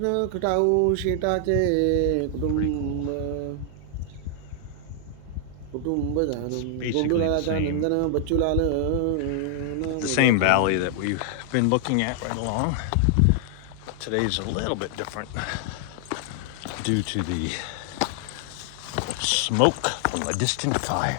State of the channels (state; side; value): different; both; correlation 0.00